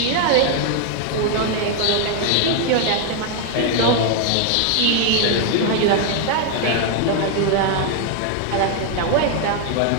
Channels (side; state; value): both; different; correlation 0.00